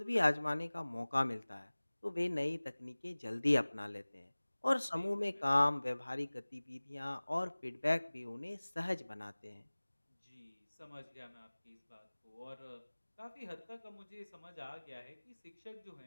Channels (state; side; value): inverted; both; correlation -1.00